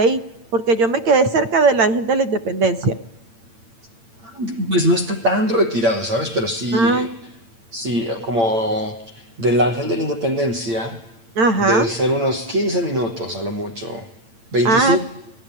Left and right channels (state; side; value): late; left; 8.8 ms